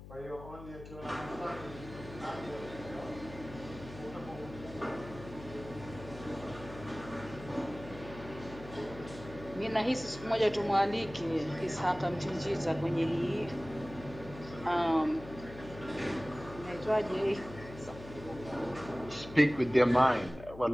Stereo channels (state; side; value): noise; left; hum, 14 dB below the sound